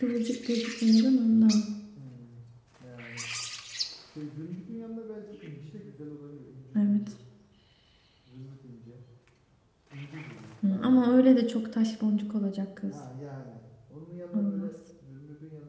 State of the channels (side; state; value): both; identical; correlation 1.00